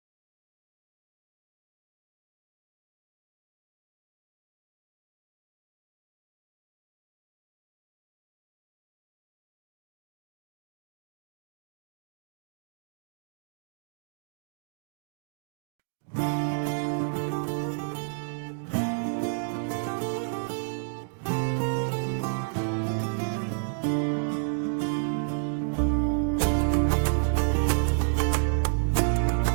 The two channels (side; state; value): left; silent; digital silence